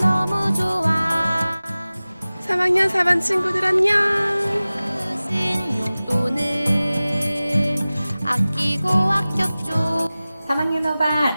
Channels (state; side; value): inverted; both; correlation -0.98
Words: 좋아 3학년 4반 친구들 안녕. 주신 용돈을 아끼고 아꼈죠 3학년 5반